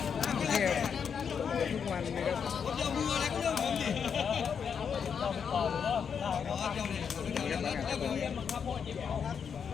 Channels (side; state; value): right; quieter; 6.9 dB